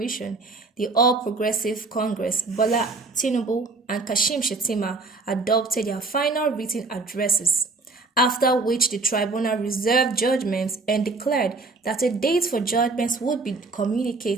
the All Progressive Congress, Bola Tinubu, and Kashim Shettima, adopted their final written addresses, after which the tribunal reserved judgments and declared that a date for judgments would be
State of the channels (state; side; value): quieter; left; 3.7 dB